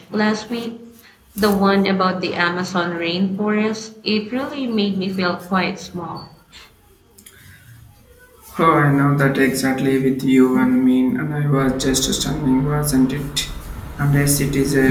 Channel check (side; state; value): both; identical; correlation 1.00